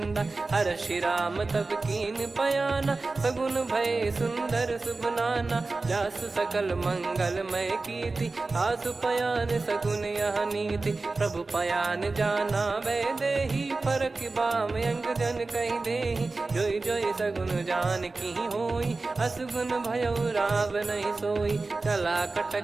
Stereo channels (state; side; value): quieter; left; 3.6 dB